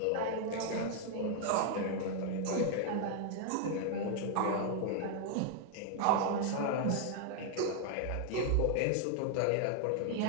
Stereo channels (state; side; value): different; both; correlation 0.00